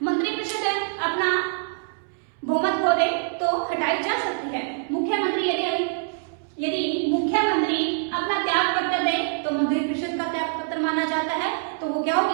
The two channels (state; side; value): silent; left; 62 dB below the other